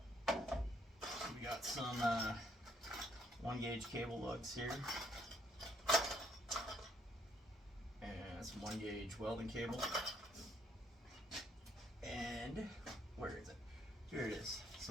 got some 1-gauge cable lugs here. And some 1-gauge welding cable. And where is it? Here it is.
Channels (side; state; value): both; normal; correlation 0.69